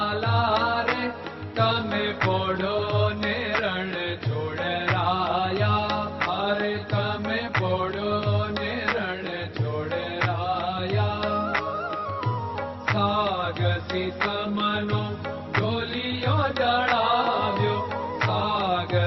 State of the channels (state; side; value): identical; both; correlation 1.00